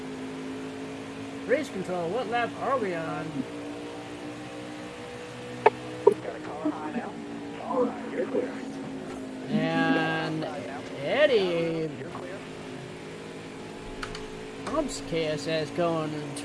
Race control. What lap are we on? Got a car high now. All right, you're clear. And Eddie You're clear. bumps KSS going in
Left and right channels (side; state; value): both; identical; correlation 1.00